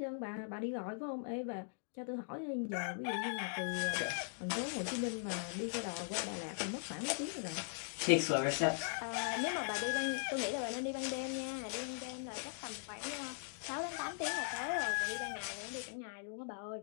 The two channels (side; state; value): right; silent; digital silence